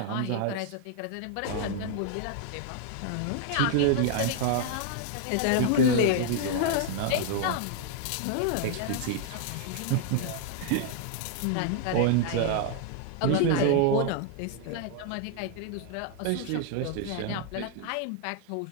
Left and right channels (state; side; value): different; both; correlation 0.00